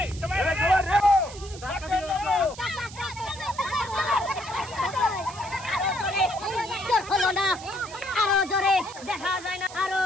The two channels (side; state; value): right; noise; hiss, 16 dB below the sound